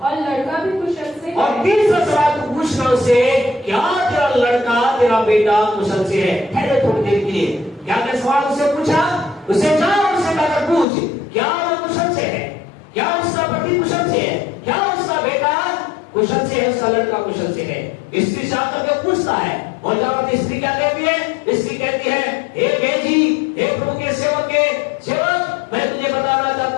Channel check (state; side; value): drops out; right; at 10.9 s